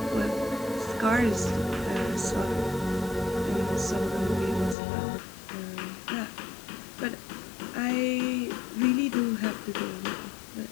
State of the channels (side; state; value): right; drops out; at 4.8 s